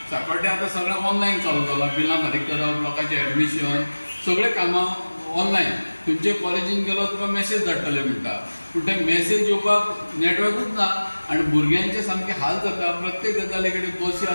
सांकवाळ्या आतां सगळें ऑनलायन चालू जालां. बिलां फारीक करप, लोकांचें एडमिशन, सगळें कामां ऑनलायन. खंयचे कॉलेजीन गेलो तुका मॅसेज धाडटले म्हणटा, पूण ते मॅसेज येवपाक नेटवर्कूच ना आनी भुरग्यांचे सामके हाल जाता. प्रत्येक गजाली कडेन बसी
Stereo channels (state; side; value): inverted; both; correlation -1.00